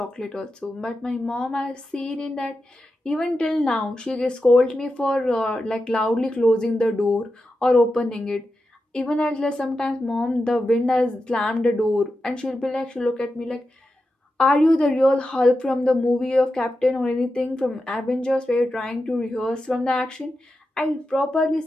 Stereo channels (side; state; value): both; normal; correlation 0.90